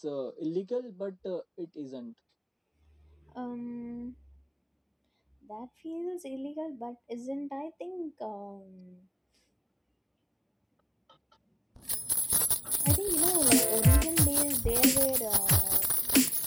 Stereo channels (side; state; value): both; identical; correlation 1.00